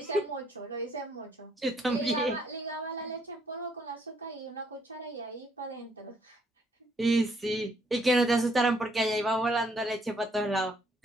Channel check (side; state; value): both; normal; correlation 0.68